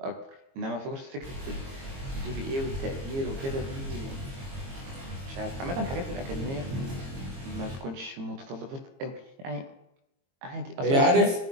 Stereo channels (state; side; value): late; left; 22 ms